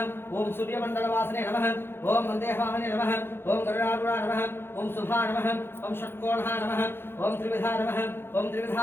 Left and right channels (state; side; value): late; right; 0.11 ms